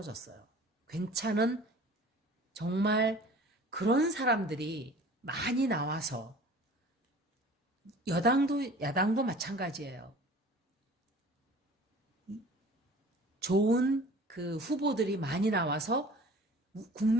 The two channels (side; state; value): both; normal; correlation 0.45